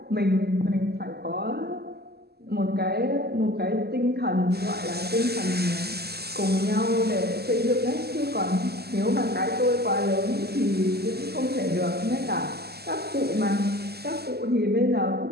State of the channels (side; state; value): left; late; 0.46 ms